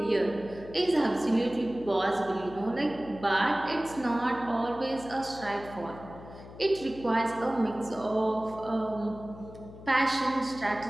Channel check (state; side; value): noise; left; hum, 16 dB below the sound